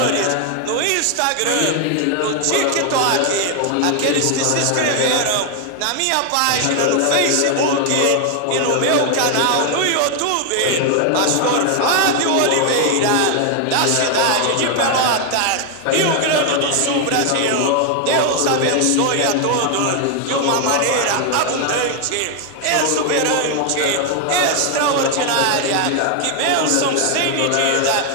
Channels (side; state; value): both; different; correlation 0.00